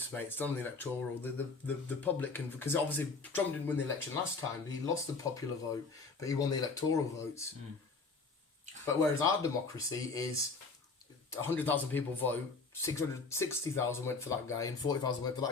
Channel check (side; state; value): right; quieter; 4.2 dB